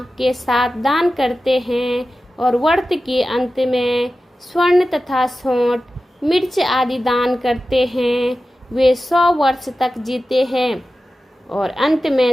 के साथ दान करते हैं और व्रत के अंत में स्वर्ण तथा सौंठ, मिर्च आदि दान करते हैं, वे 100 वर्ष तक जीते हैं और अंत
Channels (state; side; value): normal; both; correlation 0.94